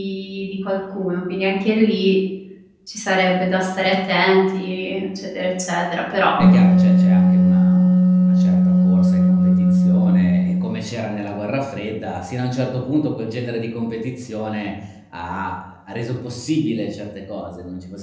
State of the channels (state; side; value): identical; both; correlation 1.00